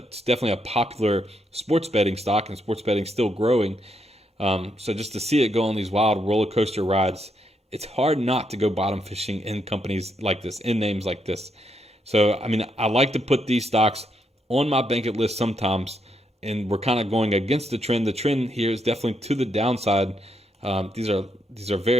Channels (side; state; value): both; normal; correlation 0.78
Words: definitely a popular sports betting stock, and sports betting still growing. So just to see it go on these wild roller coaster rides, it's hard not to go bottom fishing in companies like this, in names like this. So, I like to put these stocks on my Bankit list sometimes, and we're kind of going against the trend. The trend here is definitely to the downside. These are